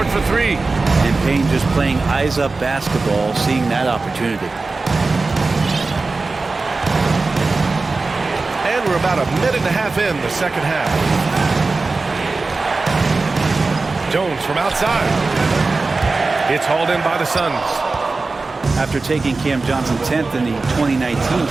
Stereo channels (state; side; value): quieter; left; 3.7 dB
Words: for 3. And Payne just playing eyes-up basketball, seeing that opportunity. And we're about a minute and a half in the second half. Jones from outside. It's hauled in by the Suns. After taking Cam Johnson 10th in the 2019